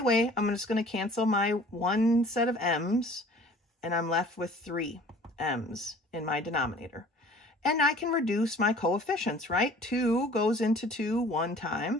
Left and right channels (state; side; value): normal; both; correlation 0.50